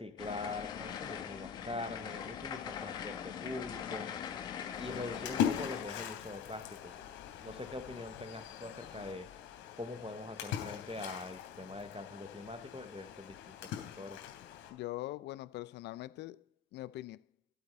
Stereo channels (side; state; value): right; quieter; 6.5 dB